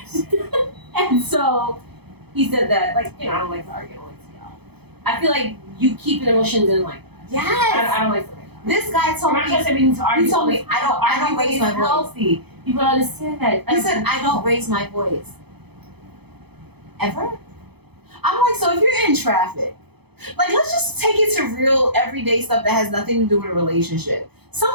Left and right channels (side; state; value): left; late; 0.98 ms